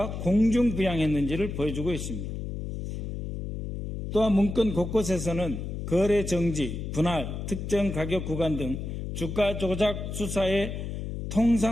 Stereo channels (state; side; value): noise; left; hum, 6 dB below the sound